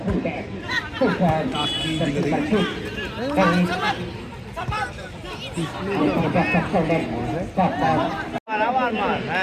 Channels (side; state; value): both; identical; correlation 1.00